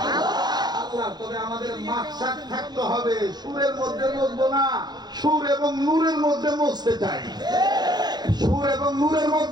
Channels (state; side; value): late; left; 0.20 ms